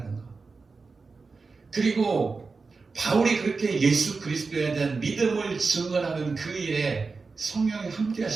것. 그리고 바울이 그렇게 예수 그리스도에 대한 믿음을 증언하는 그 일에 성령이 함께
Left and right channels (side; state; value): left; quieter; 4.3 dB